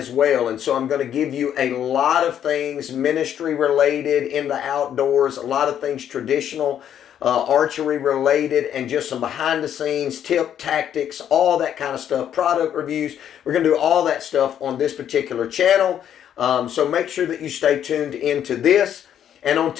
well. And so I'm going to give you a lot of things ministry related in the outdoors, a lot of things traditional, archery related, and just some behind the scenes tip, tactics, all that kind of stuff, product reviews. We're going to do all that stuff on this particular channel. So make sure that you stay tuned into this. And on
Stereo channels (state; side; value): quieter; right; 9.8 dB